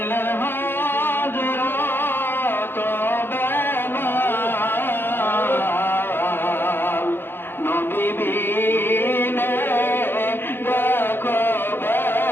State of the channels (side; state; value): right; late; 0.10 ms